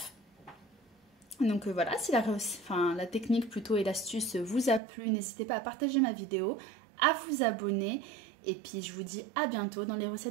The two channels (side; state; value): left; drops out; at 4.8 s